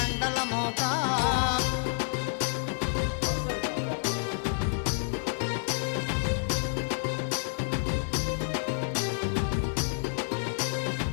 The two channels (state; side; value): silent; right; 58 dB below the other